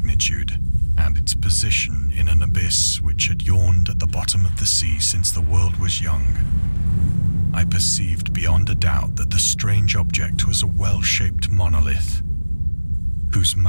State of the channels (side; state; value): both; inverted; correlation -1.00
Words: and its position in an abyss which had yawned at the bottom of the sea since the world was young, I perceived beyond a doubt that the strange object was a well-shaped monolith, whose